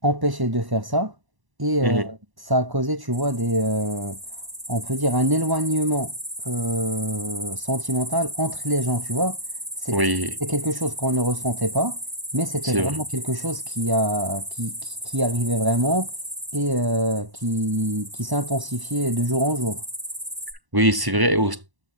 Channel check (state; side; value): late; left; 1.0 ms